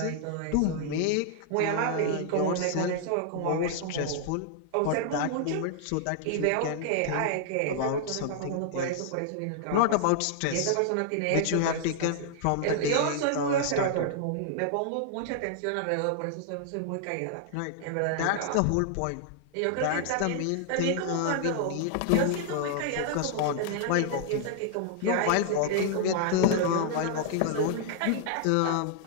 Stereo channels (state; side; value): different; both; correlation -0.01